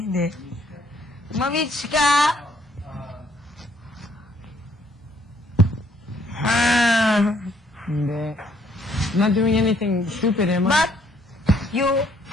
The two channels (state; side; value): normal; both; correlation 0.67